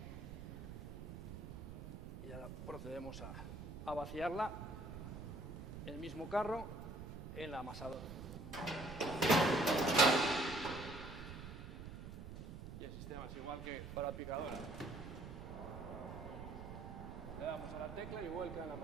Y ya procedemos a vaciarla el mismo carro en la amasadora. Y el sistema es igual que para picadora. Le damos a la tecla y vuelca en la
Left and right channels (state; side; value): noise; right; rumble, 9 dB below the sound